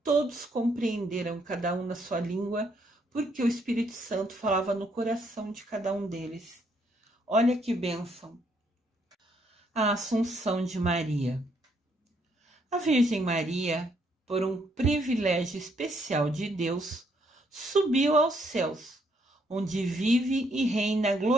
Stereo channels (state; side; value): normal; both; correlation 0.71